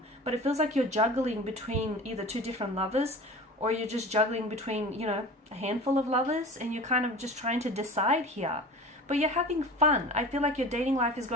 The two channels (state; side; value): normal; both; correlation 0.37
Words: But it feels like you're juggling between either two different lovers, or you're just juggling between, you know, a handful of lovers, and you're kind of just trying to decide here. But you're having fun. I feel like your dating life is